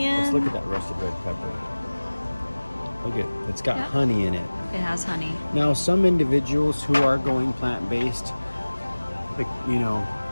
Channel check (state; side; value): inverted; both; correlation -1.00